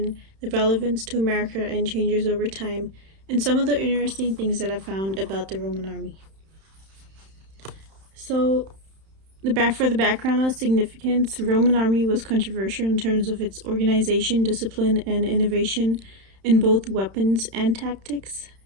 the relevance to America and changes over time, and some of the interesting things that I found about the Roman army. So, for the background of significance, the Roman army was controversial in terms of its organization, discipline, and innovation in both weapons and tactics.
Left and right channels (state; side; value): late; left; 31 ms